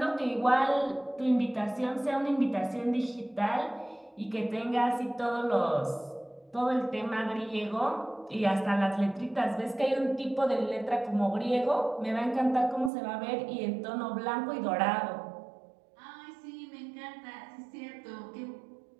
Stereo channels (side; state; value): left; drops out; at 12.9 s